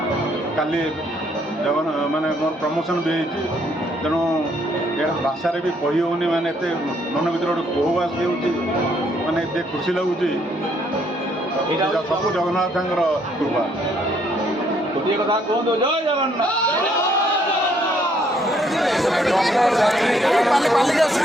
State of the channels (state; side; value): normal; both; correlation 0.68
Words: काली जगन माने मोर प्रमोशन भी होती तेणु ये भाषार भी कही होनी माने मन भर गोटे कोहवास भी माने एत खुशी लगुच सब जगन्नाथ कृपा। गोटे कथा कहते जय जगन्नाथ।